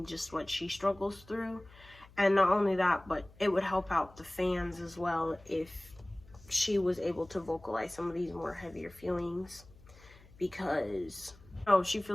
just what she struggles through. And not only that, but it would help out the fans as well if she was able to vocalize some of these more heavier feelings, because she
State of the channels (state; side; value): noise; left; hum, 24 dB below the sound